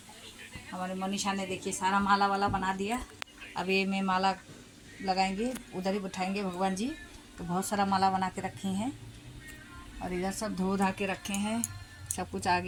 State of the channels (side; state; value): both; identical; correlation 1.00